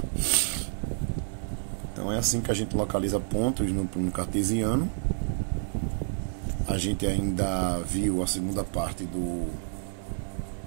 Então é assim que a gente localiza pontos no cartesiano. A gente ainda viu a segunda parte no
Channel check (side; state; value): left; silent; digital silence